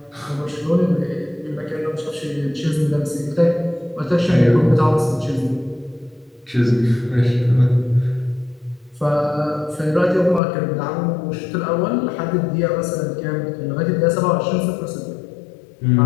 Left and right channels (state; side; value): drops out; right; at 10.4 s